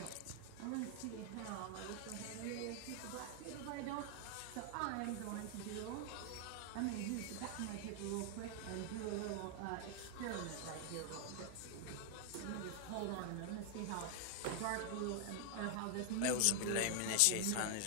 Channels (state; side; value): different; both; correlation 0.00